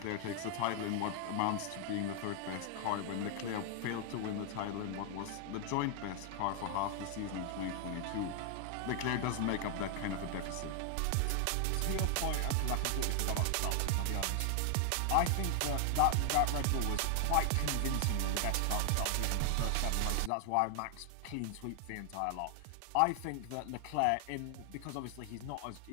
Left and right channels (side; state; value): both; different; correlation 0.00